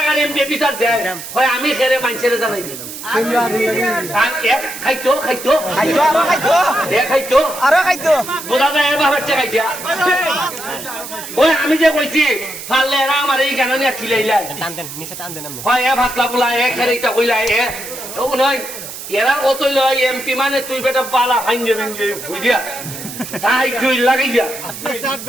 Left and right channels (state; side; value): noise; right; hiss, 11 dB below the sound